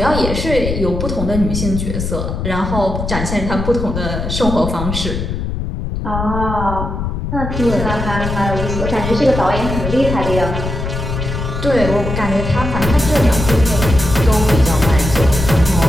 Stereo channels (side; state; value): left; noise; rumble, 4 dB below the sound